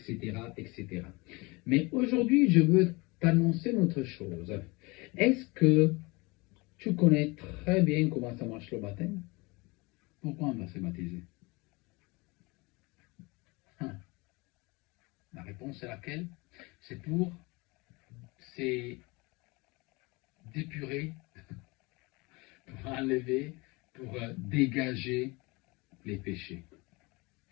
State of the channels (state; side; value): quieter; right; 25.5 dB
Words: etc. Mais aujourd'hui, je veux t'annoncer une autre chose. Est-ce que tu connais très bien comment ça marche le baptême? Pourquoi on va se baptiser? La réponse est laquelle? C'est pour d'épurer, pour enlever, pour dégager les péchés.